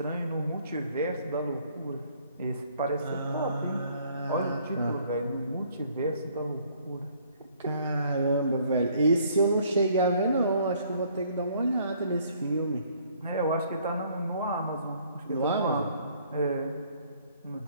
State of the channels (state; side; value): inverted; both; correlation -0.62